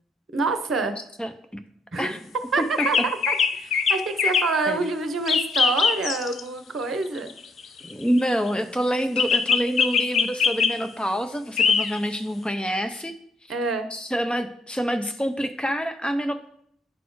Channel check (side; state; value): both; normal; correlation 0.72